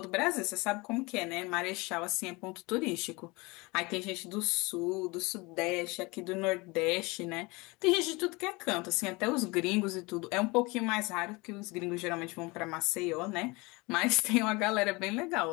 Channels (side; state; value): right; quieter; 24.9 dB